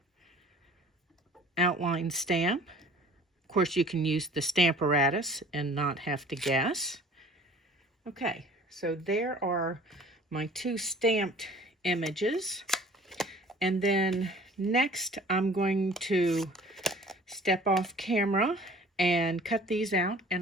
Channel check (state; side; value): normal; both; correlation 0.49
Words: outline stamp. Of course, you can use the Stamparatus and not have to guess. Okay, so there are my 2 stamped images. And then next, I'm going to step off camera and cut these out,